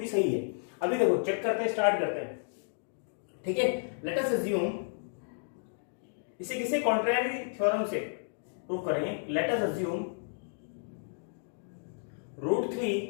सही है। अभी देखो चेक करते हैं, स्टार्ट करते हैं, ठीक है। लेट अस अज्यूम, इसे किसी कॉन्ट्रेरी थ्योरम से प्रूव करेंगे। Let us assume root 3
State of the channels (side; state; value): right; silent; digital silence